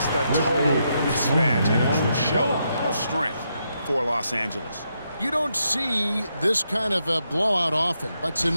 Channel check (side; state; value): both; inverted; correlation -0.81